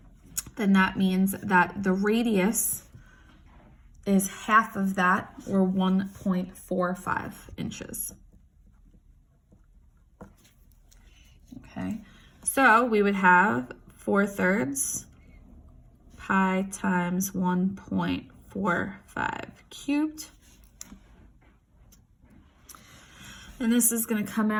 then that means that the radius is half of that, or 1.45 inches. Okay, so we would have 4/3 pi times 1.45 cubed. And this is going to come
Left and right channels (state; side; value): identical; both; correlation 1.00